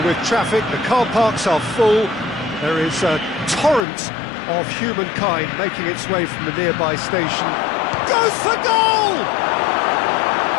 with traffic. The car parks are full. There is a torrent of humankind making its way from the nearby station. Goes for goal!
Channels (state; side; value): drops out; right; at 3.9 s